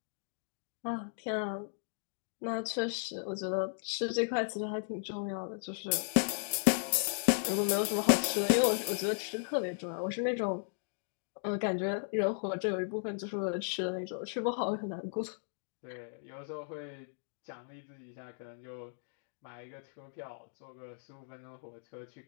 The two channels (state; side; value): silent; right; digital silence